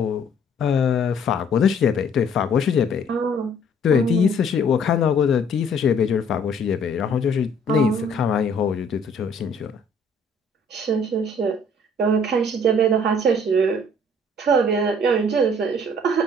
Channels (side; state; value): both; normal; correlation 0.59